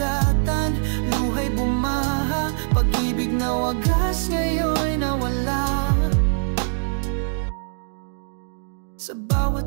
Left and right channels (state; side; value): silent; left; digital silence